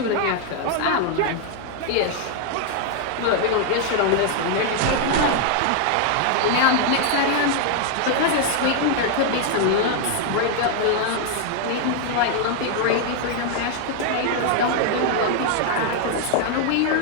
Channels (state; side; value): different; both; correlation 0.00